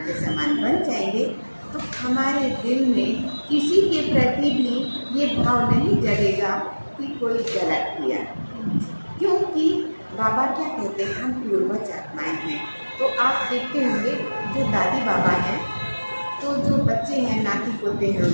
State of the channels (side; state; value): both; inverted; correlation -1.00